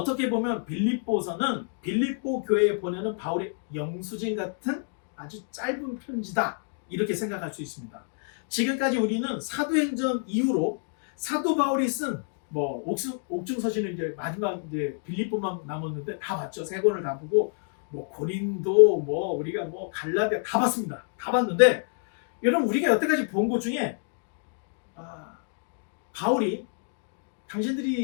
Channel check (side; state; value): right; silent; 59 dB below the other